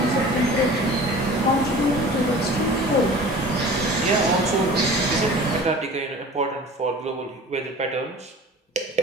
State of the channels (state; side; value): normal; both; correlation 0.42